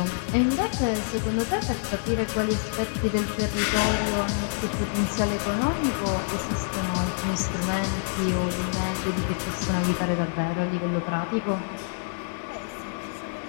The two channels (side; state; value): right; silent; digital silence